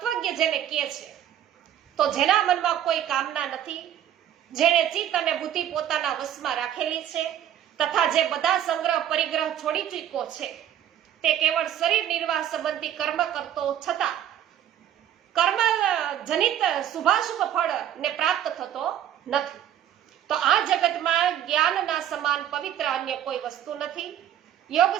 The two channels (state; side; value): quieter; left; 10.6 dB